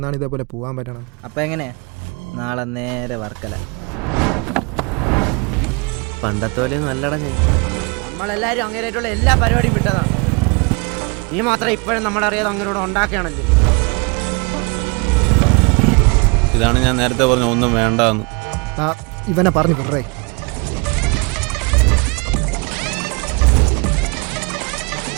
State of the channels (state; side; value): quieter; left; 31.1 dB